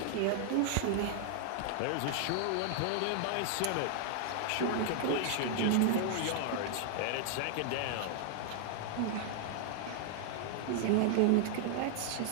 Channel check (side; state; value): both; different; correlation -0.01